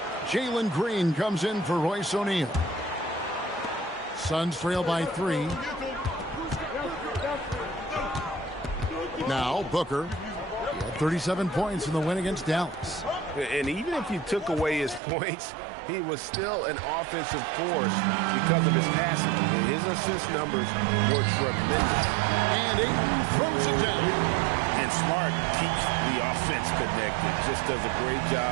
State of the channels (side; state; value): left; drops out; at 15.0 s